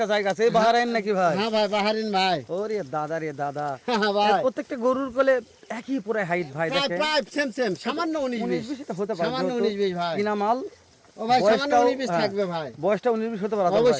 জায়গা আছে, এই বাহারাইন নাকি ভাই? হ্যাঁ ভাই, বাহারিন ভাই। ওরে দাদা রে দাদা, হ্যাঁ ভাই, প্রত্যেকটা গরুর কোলে একই পুরো হাইট ভাই। প্রায় দেখেন প্রায় সেম সামান্য 19 19 20 20 এটা হতে পারে, সামান্য যেহেতু 19 20 ভাই। কিনা মাল। ও ভাই, সামান্য বয়সটাও- 19 20 হ্যাঁ, থাকবে ভাই। বয়সটা 19 20 হতে পারে আতর ভাই।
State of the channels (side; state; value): both; identical; correlation 1.00